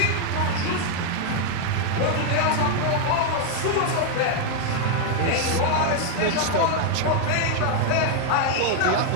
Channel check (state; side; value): different; both; correlation 0.01